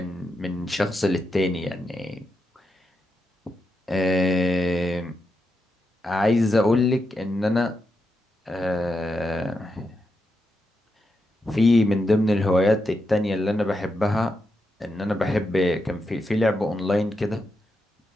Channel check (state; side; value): normal; both; correlation 0.85